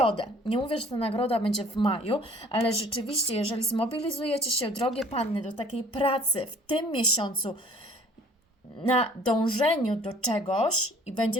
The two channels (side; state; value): both; normal; correlation 0.52